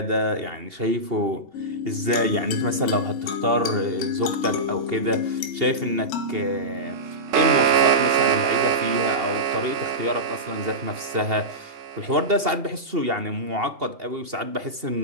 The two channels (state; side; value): late; left; 2.8 ms